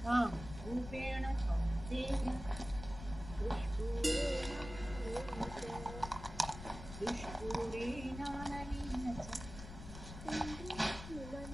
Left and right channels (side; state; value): left; noise; rumble, 11 dB below the sound